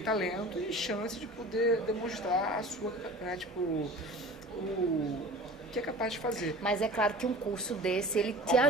talento e chance de poder demonstrar a sua, né, tipo, o que é capaz de fazer. Mas é claro que um curso desse, ele te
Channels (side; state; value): both; normal; correlation 0.40